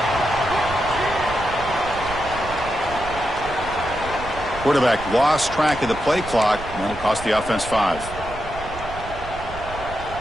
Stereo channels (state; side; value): noise; right; rumble, 12 dB below the sound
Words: Quarterback lost track of the play clock, and that'll cost the offense 5.